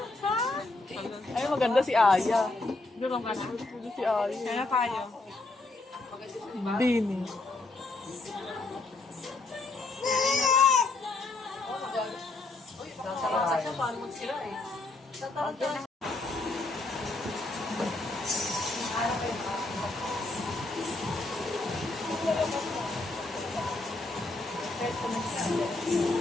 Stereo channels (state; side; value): quieter; right; 3.2 dB